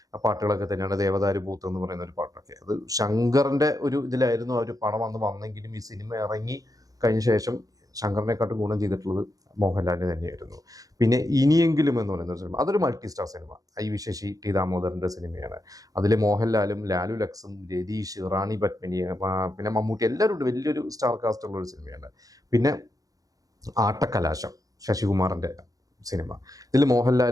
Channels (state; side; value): late; left; 0.17 ms